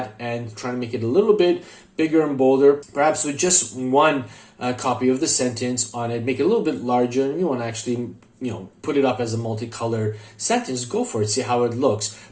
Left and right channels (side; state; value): both; identical; correlation 1.00